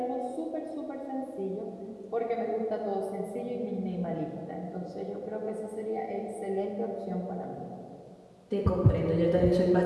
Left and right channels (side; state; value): both; identical; correlation 1.00